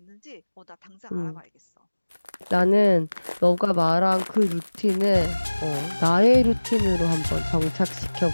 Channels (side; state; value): both; inverted; correlation -1.00